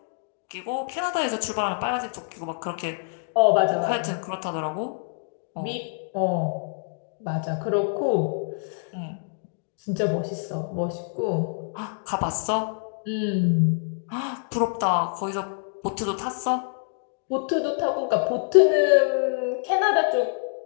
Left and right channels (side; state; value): right; silent; digital silence